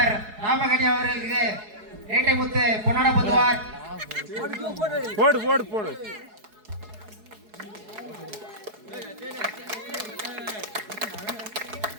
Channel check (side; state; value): left; late; 4.7 ms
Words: ராமகனி அவர்களுக்கு ஏட்டை முத்து பொன்னாட பொதுவார். போடு போடு போடு.